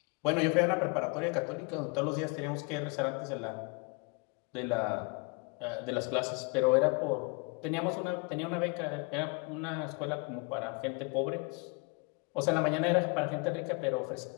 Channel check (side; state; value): right; quieter; 31.9 dB